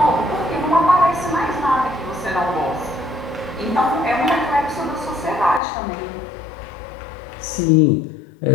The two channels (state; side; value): drops out; right; at 5.6 s